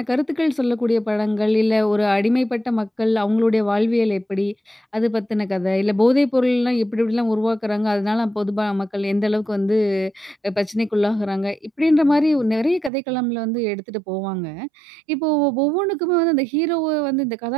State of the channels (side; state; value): left; drops out; at 12.9 s